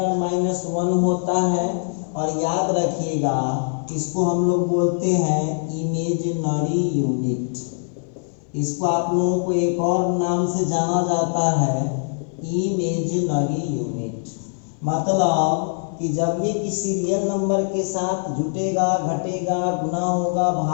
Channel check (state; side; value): silent; right; 61 dB below the other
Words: होता है, और याद रखिएगा इसको हम लोग बोलते हैं इमेजिनरी यूनिट। इसको आप लोगों को एक और नाम से जाना जाता है इमेजिनरी यूनिट। मतलब कि जब ये किसी रियल नंबर के साथ जुटेगा, घटेगा, गुना होगा,